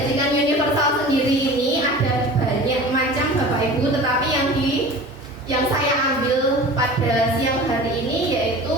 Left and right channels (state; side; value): normal; both; correlation 0.38